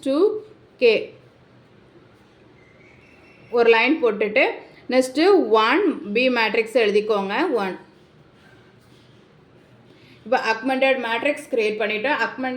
2k ஒரு லைன் போட்டுட்டு நெக்ஸ்ட்டு 1 B மேட்ரிக்ஸ் எழுதிக்கோங்க 1. இப்போ அக்மெண்டட் மேட்ரிக்ஸ் க்ரியேட் பண்ணிவிட்டோம்.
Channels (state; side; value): identical; both; correlation 1.00